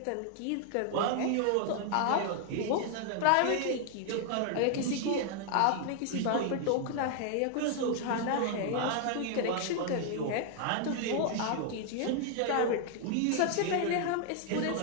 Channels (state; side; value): different; both; correlation 0.00